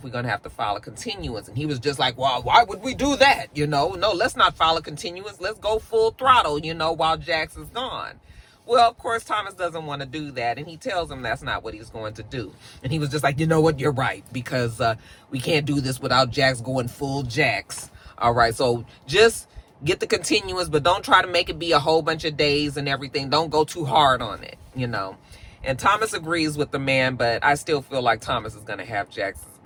We're going to have to file a continuance. And he was just like, well, why would we do that? No, let's not file a continuance. Let's go full throttle, while Jax is gone. Well, of course, Thomas doesn't want to do that. And he tells him that's not what he's going to do. And he was just like, you know what? You're right. Because we can't do this without Jax going full Jax. All right. So just get the continuance, but don't try to make it be a whole bunch of days and everything. Don't go too hard on it, And Thomas agrees with the man, but I still feel like Thomas is going to have Jax's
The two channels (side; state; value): both; identical; correlation 1.00